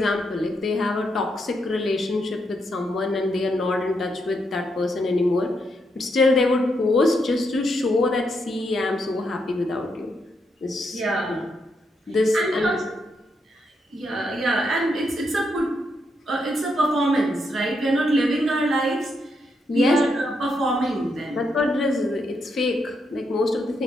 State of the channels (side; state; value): both; normal; correlation 0.80